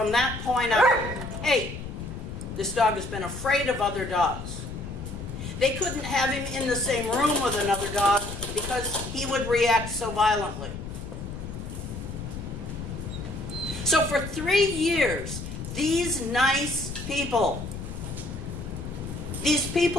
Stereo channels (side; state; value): left; noise; rumble, 9 dB below the sound